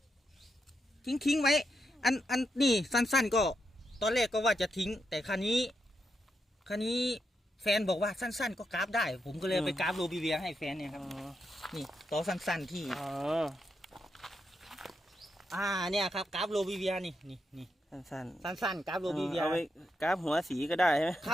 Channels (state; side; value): normal; both; correlation 0.83